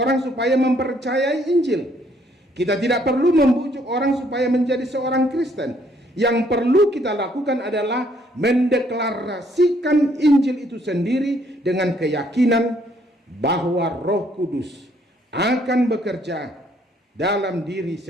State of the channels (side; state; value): both; normal; correlation 0.67